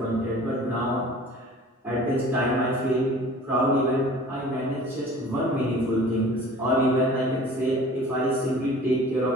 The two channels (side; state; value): both; normal; correlation 0.45